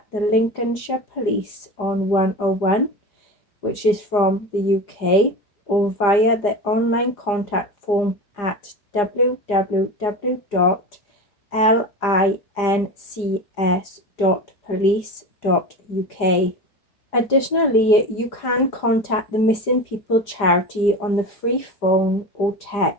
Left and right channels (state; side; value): late; right; 4.9 ms